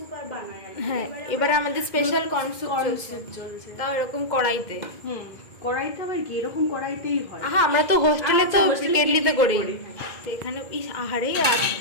আর বানাই। হ্যাঁ, এবারে আমাদের স্পেশাল কর্ন স্যুপ চলছে, চলছে। তাও এরকম কড়াইতে। কড়াইতে আবার কি এরকম কড়াইতেই হয়। আহা, আমরা তো হোস্টেলে তো হোস্টেলে কেটলিতে কেটলিতে করি। করি। তো এখানে ইস আহারে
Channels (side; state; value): right; late; 2.0 ms